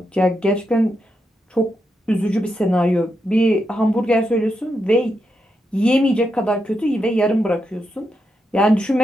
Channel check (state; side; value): normal; both; correlation 0.84